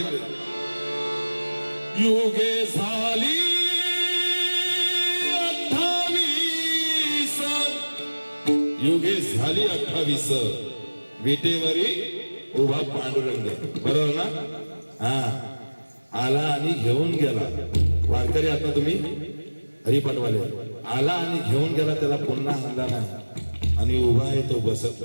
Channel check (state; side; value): inverted; both; correlation -1.00